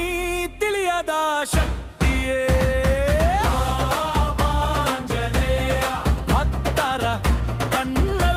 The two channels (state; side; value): identical; both; correlation 1.00